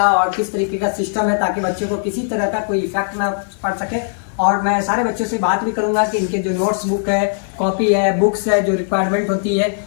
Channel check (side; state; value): right; silent; digital silence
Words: और किस तरीके का सिस्टम है, ताकि बच्चों को किसी तरह का कोई इफेक्ट ना पड़ सके। और मैं सारे बच्चों से बात भी करूंगा कि इनके जो नोट्स बुक है, कॉपी है, बुक्स है, जो रिक्वायरमेंट होती है